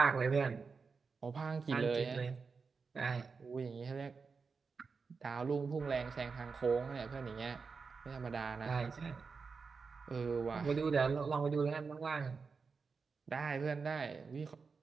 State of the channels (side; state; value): left; quieter; 5.0 dB